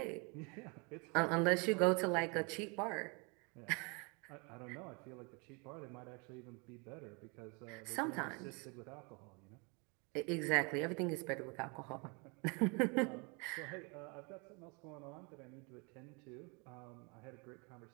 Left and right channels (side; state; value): left; quieter; 31.7 dB